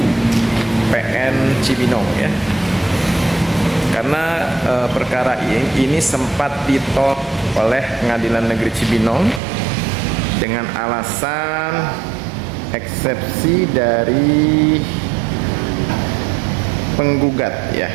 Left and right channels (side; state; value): left; drops out; at 9.4 s